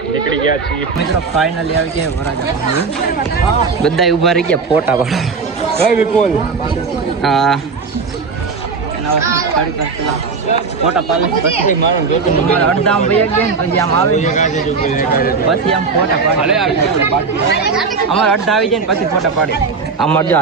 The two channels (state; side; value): quieter; left; 4.8 dB